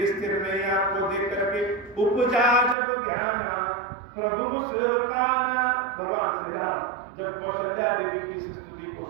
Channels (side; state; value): left; drops out; at 2.8 s